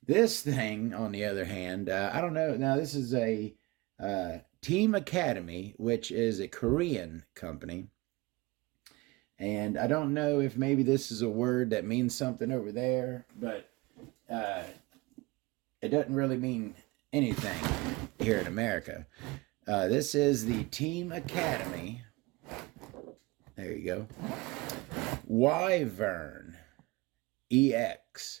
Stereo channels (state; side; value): quieter; left; 23.0 dB